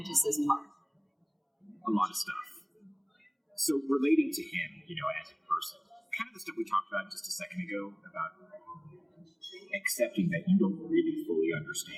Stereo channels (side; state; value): both; identical; correlation 1.00